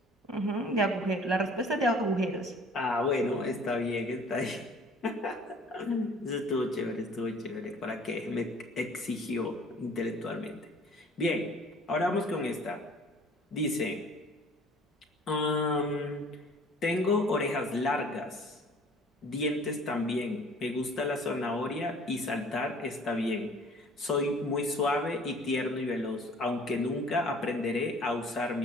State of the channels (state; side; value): normal; both; correlation 0.51